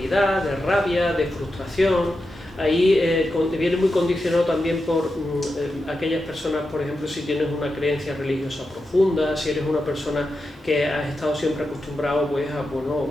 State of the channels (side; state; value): both; normal; correlation 0.89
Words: de rabia, de frustración. Ahí viene muy condicionado también por aquellas personas, por ejemplo, si tienes una creencia religiosa profunda, si eres una persona que has estado siempre acostumbrado pues,